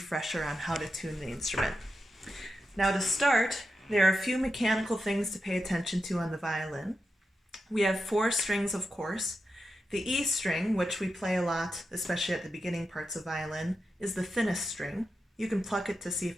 on how to tune the instrument. Now to start, there are a few mechanical things to pay attention to on the violin. We have 4 strings, of course. The E string, which we play a lot, especially at the beginning parts of violin, is the thinnest string. You can pluck it to see if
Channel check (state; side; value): normal; both; correlation 0.89